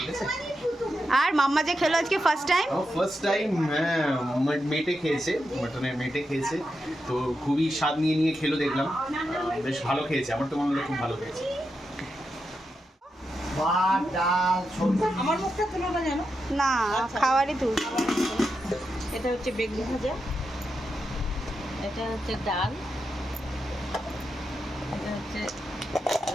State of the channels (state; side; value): normal; both; correlation 0.87